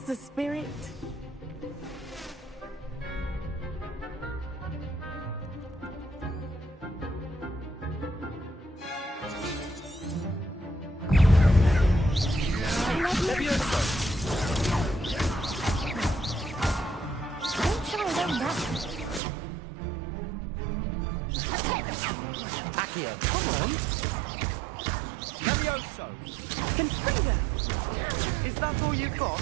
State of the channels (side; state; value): left; drops out; at 19.2 s